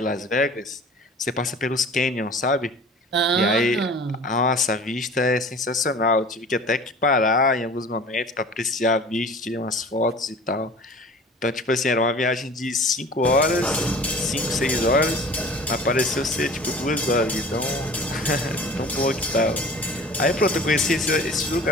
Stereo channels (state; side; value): normal; both; correlation 0.43